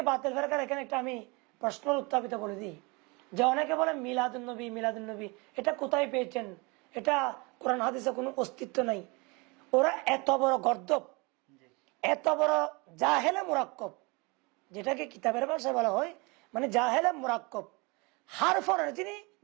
বাতিল ফেরকার এখানে একটা আমি প্রশ্ন উত্থাপিত করে দিই, যে অনেকে বলে মিলাদুন্নবী মিলাদুন্নবী, এটা কোথায় পেয়েছেন? এটা কোরআন হাদিসে কোনো অস্তিত্ব নাই। ওরা এত বড় গর্দব, জি এত বড় জাহেলে মুরাক্কব, যেটাকে কিতাবের ভাষায় বলা হয় মানে জাহেলে মুরাক্কব। হারফনের যিনি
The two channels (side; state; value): left; quieter; 28.0 dB